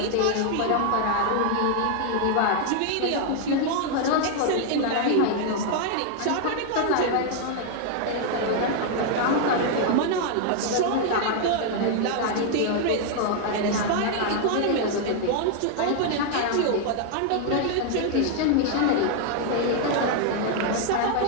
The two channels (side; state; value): both; different; correlation 0.00